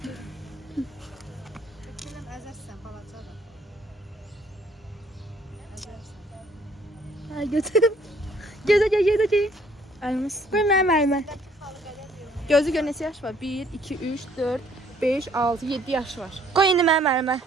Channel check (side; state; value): both; normal; correlation 0.62